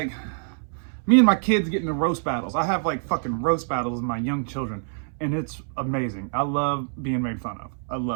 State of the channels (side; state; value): left; silent; 61 dB below the other